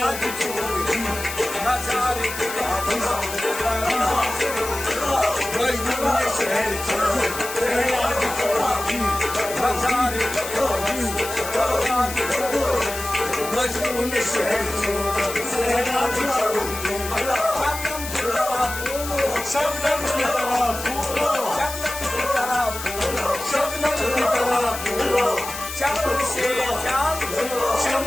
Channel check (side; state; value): left; noise; hiss, 9 dB below the sound